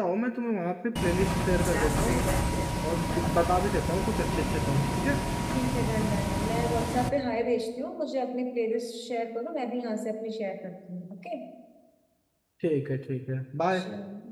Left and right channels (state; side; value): identical; both; correlation 1.00